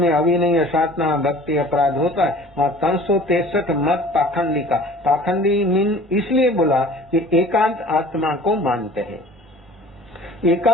अविनय, असाधना, भक्ति, अपराध होता है वहाँ 363 मत पाखंडी का। पाखंडी मीन इसलिए बोला कि एकांत आत्मा को मानते हैं।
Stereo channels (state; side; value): normal; both; correlation 0.46